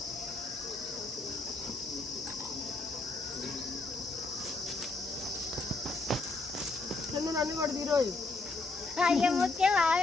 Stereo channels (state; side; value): quieter; right; 3.4 dB